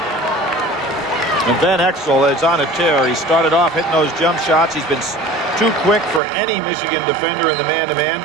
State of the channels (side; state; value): left; drops out; at 6.2 s